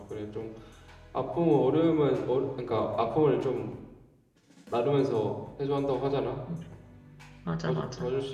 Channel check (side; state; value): both; identical; correlation 1.00